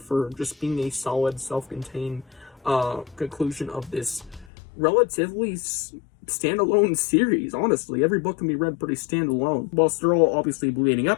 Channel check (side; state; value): right; drops out; at 4.5 s